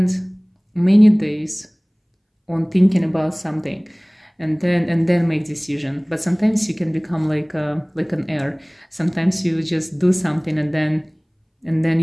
many days on thinking about something and then make decision. But sometimes you can become like an air. Sometimes you just do something and then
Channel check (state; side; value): identical; both; correlation 1.00